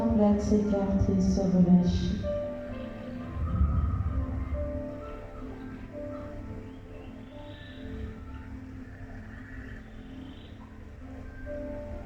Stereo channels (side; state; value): both; identical; correlation 1.00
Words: s'écarter, se relâcher.